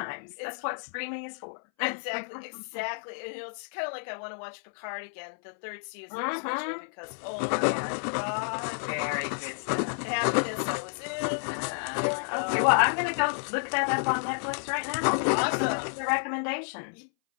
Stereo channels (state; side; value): silent; right; 58 dB below the other